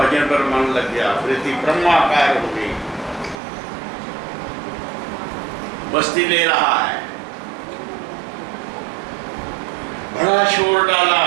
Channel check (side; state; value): left; drops out; at 3.4 s